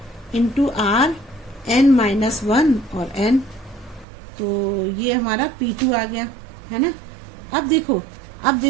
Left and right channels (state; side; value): drops out; left; at 4.0 s